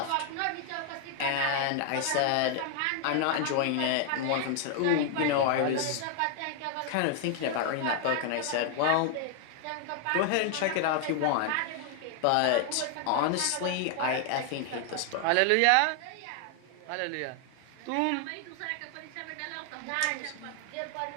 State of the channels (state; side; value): different; both; correlation 0.00